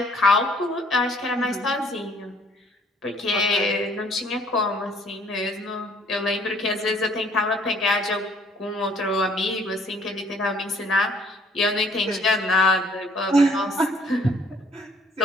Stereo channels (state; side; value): normal; both; correlation 0.60